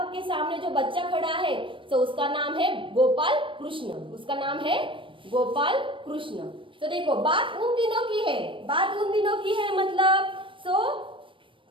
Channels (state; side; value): late; left; 0.25 ms